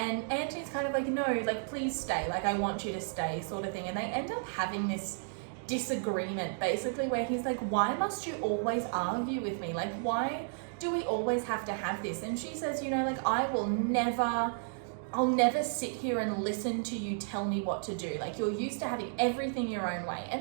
Anthony's kind of like, no, like, please stay. Like, I want you to stay, sort of thing. And they end up having this disagreement, basically, where he's like, why must you always argue with me? Like, why do we always have to have this? And she says, you know, like, I'll never sit here and listen to you tell me what to do. Like, you're used to having everything your own way.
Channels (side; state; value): left; silent; digital silence